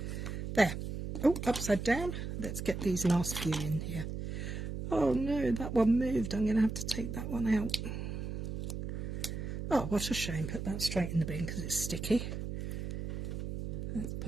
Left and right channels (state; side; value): noise; right; hum, 5 dB below the sound